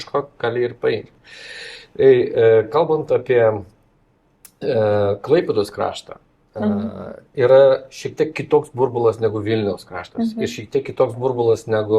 gali ir paimti. Kalbant apie Klaipėdos kraštą, yra šiek tiek kitoks burbulas negu Vilniaus kraštas ir šiek tiek kitoks burbulas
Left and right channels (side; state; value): both; identical; correlation 1.00